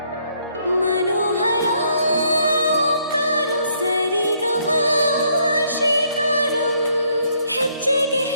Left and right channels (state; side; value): inverted; both; correlation -0.69